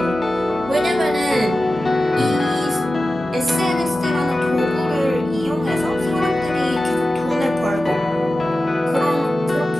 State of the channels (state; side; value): normal; both; correlation 0.94